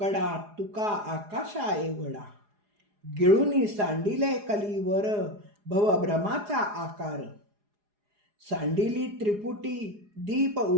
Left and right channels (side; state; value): left; late; 4.8 ms